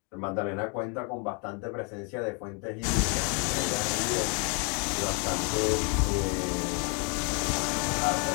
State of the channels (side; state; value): right; quieter; 35.8 dB